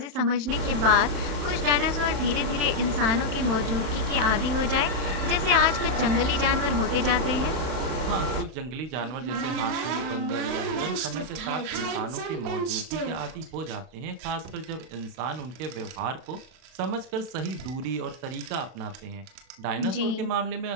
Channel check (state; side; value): late; left; 32 ms